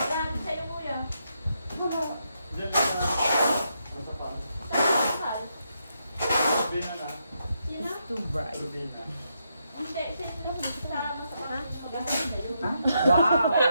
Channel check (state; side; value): inverted; both; correlation -0.81